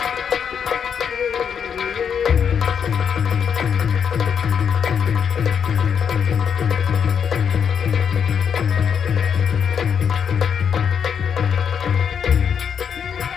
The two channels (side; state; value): right; quieter; 7.4 dB